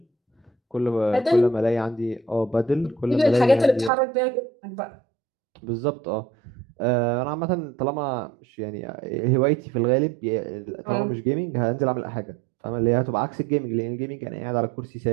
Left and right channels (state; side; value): drops out; left; at 3.9 s